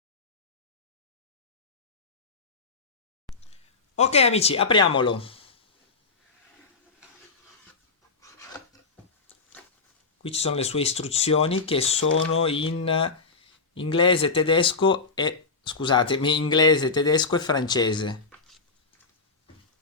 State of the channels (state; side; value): quieter; right; 4.4 dB